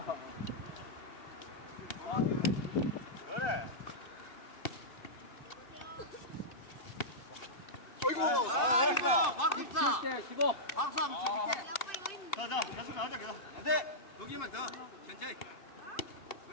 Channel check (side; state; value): right; late; 2.6 ms